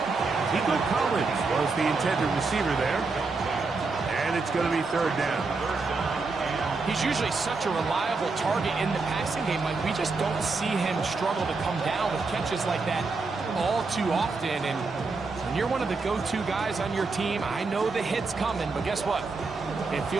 Nico Collins was the intended receiver there. And it's going to be third down. He's usually such a reliable target in the passing game. Like, we just don't see him struggle to come down with catches like that all too often. And when you're one of the go-to guys on your team, I know the hit's coming, but guess what? It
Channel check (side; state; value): left; quieter; 4.1 dB